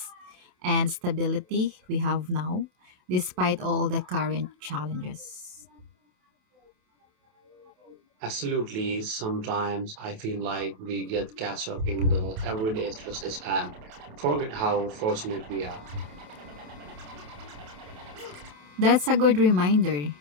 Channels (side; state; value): left; late; 27 ms